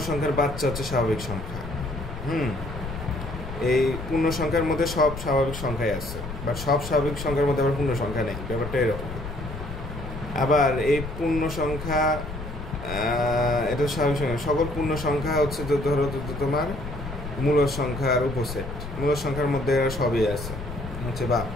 সংখ্যার বাচ্চা হচ্ছে স্বাভাবিক সংখ্যা। এই পূর্ণ সংখ্যার মধ্যে সব স্বাভাবিক সংখ্যাই আছে, বাট সব স্বাভাবিক সংখ্যার মধ্যে আবার পূর্ণ সংখ্যা নেই, ব্যাপারটা এরকম। আবার এই পূর্ণ সংখ্যা এটা স্বাভাবিক সংখ্যা। সকল পূর্ণ সংখ্যা হচ্ছে ধরো তোমার মূল সংখ্যার উপসেট, মূল সংখ্যার মধ্যে সবই আছে হচ্ছে বা,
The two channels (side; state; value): left; noise; rumble, 9 dB below the sound